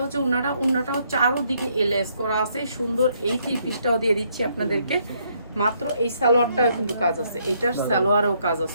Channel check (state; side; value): inverted; both; correlation -0.71